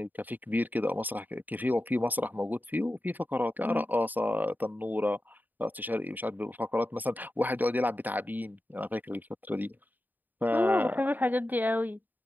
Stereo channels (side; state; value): left; late; 0.086 ms